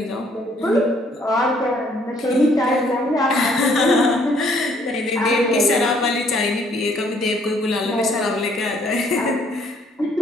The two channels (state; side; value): normal; both; correlation 0.64